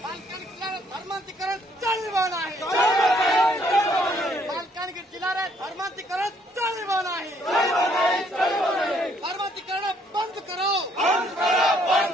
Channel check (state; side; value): normal; both; correlation 0.66